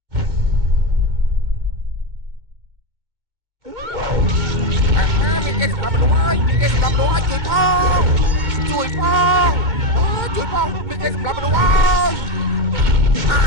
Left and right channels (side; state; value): left; late; 2.1 ms